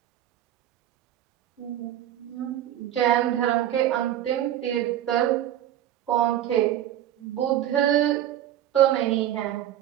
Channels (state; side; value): quieter; left; 11.9 dB